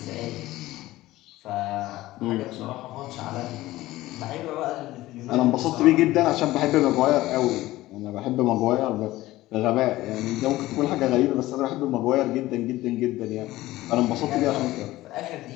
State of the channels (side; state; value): right; quieter; 17.0 dB